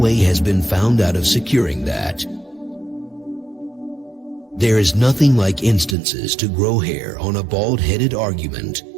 has been found out of securing that. There is nothing like instances to grow hair on a bald-headed argument.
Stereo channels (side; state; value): left; drops out; at 6.0 s